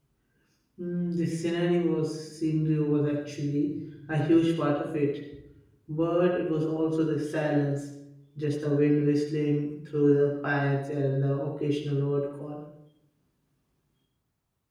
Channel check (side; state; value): both; identical; correlation 1.00